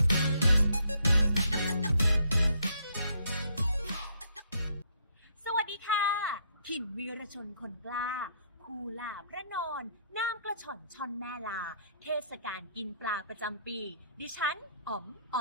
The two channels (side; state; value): both; inverted; correlation -0.68